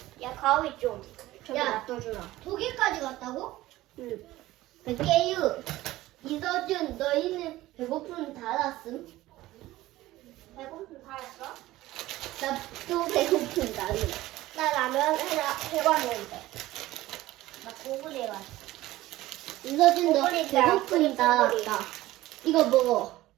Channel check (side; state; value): left; quieter; 16.7 dB